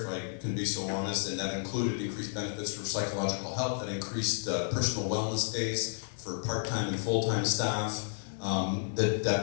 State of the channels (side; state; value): right; silent; digital silence